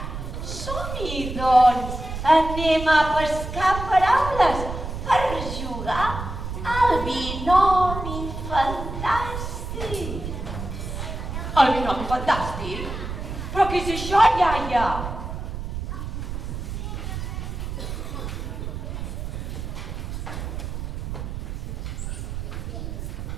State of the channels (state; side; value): noise; right; rumble, 6 dB below the sound